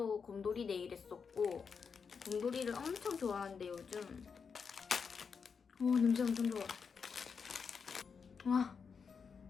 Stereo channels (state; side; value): quieter; right; 5.9 dB